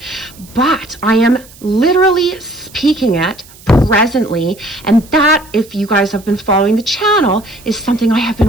but I am literally speaking it presently, and that, if you guys have been following the channel, is something I have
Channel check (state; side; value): noise; right; hiss, 23 dB below the sound